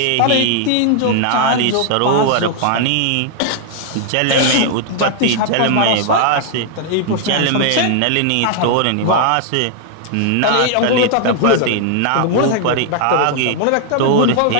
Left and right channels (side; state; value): both; different; correlation 0.00